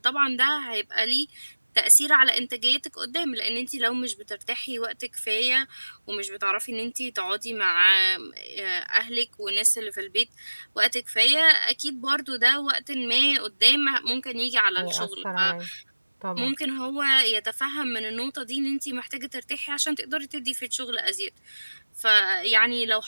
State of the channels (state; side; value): inverted; both; correlation -1.00